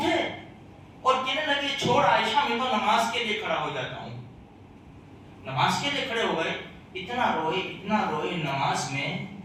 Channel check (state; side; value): identical; both; correlation 1.00